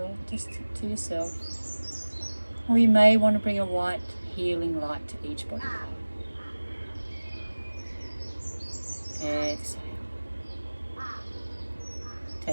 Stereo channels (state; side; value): inverted; both; correlation -1.00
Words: yourself. Or you may want to bring a white healing light to each body part. Exhale.